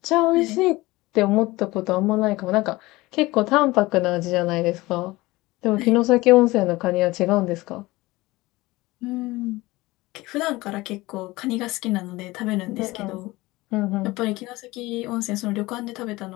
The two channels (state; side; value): quieter; right; 20.2 dB